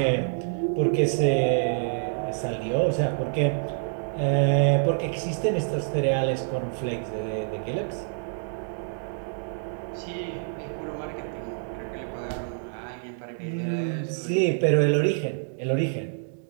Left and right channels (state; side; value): silent; left; digital silence